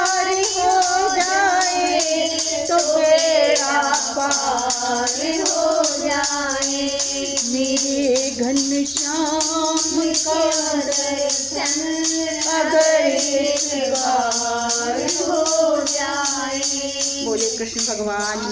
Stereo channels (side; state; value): both; identical; correlation 1.00